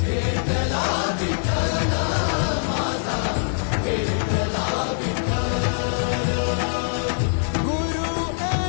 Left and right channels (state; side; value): silent; right; 56 dB below the other